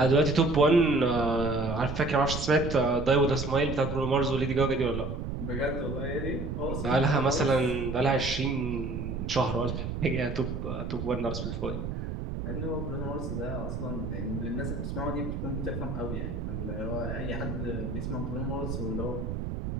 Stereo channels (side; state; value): right; noise; rumble, 4 dB below the sound